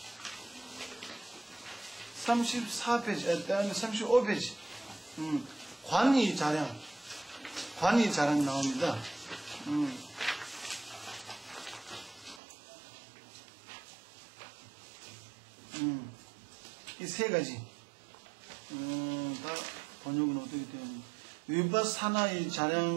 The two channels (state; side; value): drops out; left; at 12.4 s